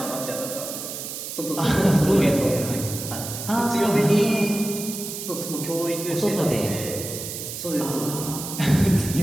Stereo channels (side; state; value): right; noise; hiss, 7 dB below the sound